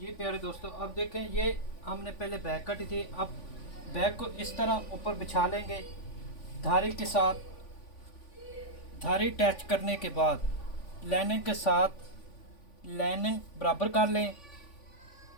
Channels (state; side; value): late; right; 3.5 ms